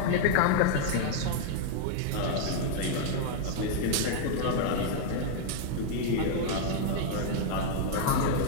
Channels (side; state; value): both; different; correlation -0.01